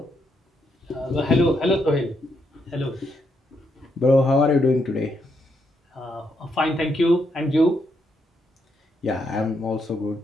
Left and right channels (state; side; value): normal; both; correlation 0.78